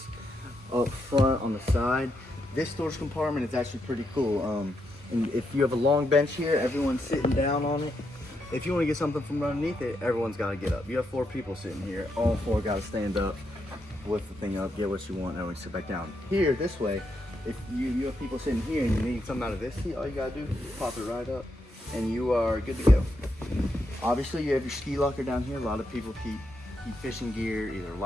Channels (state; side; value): normal; both; correlation 0.81